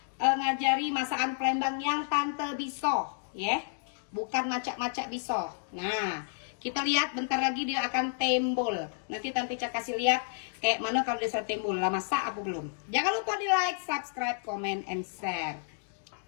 ngajari masakan Palembang yang Tante bisa ya, bukan macak-macak bisa. Nah, kita lihat bentar lagi dia akan tembol. Nanti Tante Ica kasih lihat kayak mana kalau dia sudah tembol. Lah masak apa belum? Jangan lupa di like, subscribe, comment, and share.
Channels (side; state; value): right; silent; digital silence